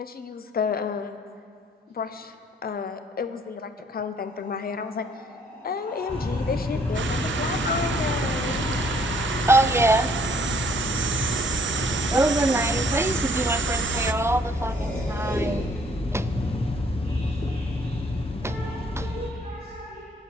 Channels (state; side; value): normal; both; correlation 0.62